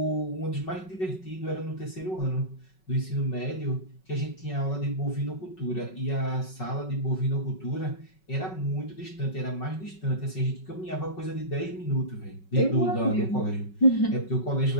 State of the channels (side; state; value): right; late; 5.4 ms